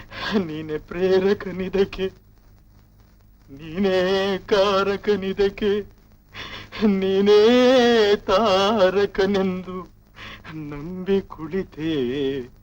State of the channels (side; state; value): both; identical; correlation 1.00